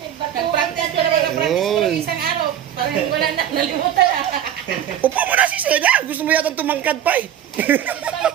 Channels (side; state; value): left; quieter; 10.4 dB